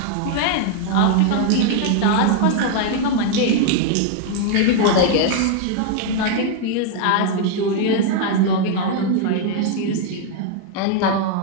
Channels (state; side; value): different; both; correlation 0.00